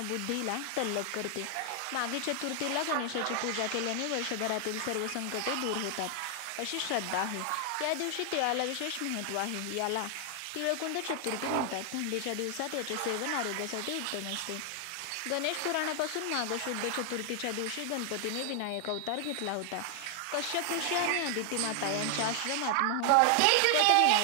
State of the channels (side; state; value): both; different; correlation 0.00